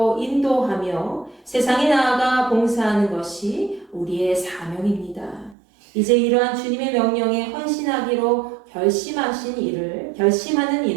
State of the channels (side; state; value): left; drops out; at 5.6 s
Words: 인도하며 세상에 나아가 봉사하는 것이 우리의 사명입니다. 이제 이러한 주님의 명령에 헌신하기로 결심하는